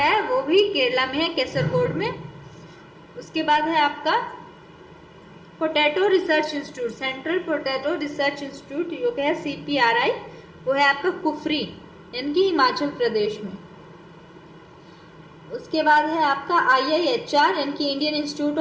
वो भी केरला में है, केसरगोड में। उसके बाद है आपका potato research institute, central potato research institute जो कि है CPRI, वो है आपका कुफरी यानी कि हिमाचल प्रदेश में। उसके बाद है आपका IIHR यानी कि Indian institute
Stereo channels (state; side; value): identical; both; correlation 1.00